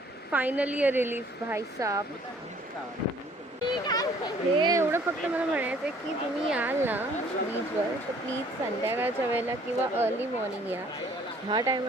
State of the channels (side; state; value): both; normal; correlation 0.57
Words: Finally a relief भाई साहब. हे एवढं फक्त मला म्हणायचं आहे की तुम्ही याल ना बीचवर तर प्लीज संध्याकाळच्या वेळेला किंवा अर्ली मॉर्निंग या. ह्या